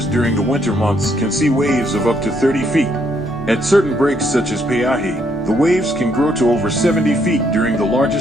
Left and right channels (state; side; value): normal; both; correlation 0.72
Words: during the winter months can see waves of up to 30 feet. At certain breaks such as Peahi, the waves can grow to over 70 feet during the